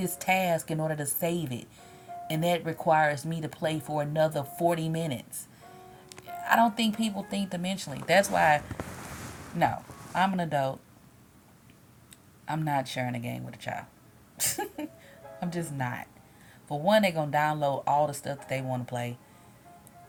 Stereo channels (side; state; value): both; identical; correlation 1.00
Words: task in order to save it? And that requires me to play for another 40 minutes. I don't think people think dimensionally. That's why, no, I'm an adult. I'm not sharing a game with a child. I'm just not. For one, they're going to download all the stuff that they want to play.